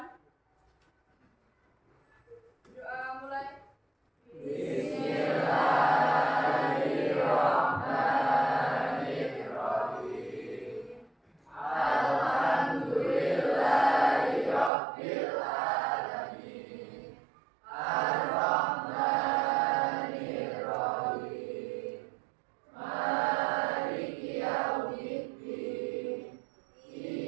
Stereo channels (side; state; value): left; drops out; at 14.7 s